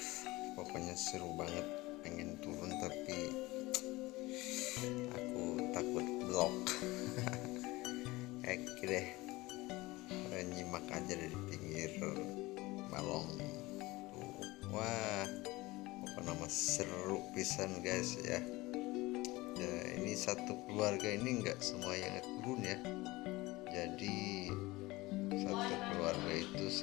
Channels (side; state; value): right; quieter; 20.8 dB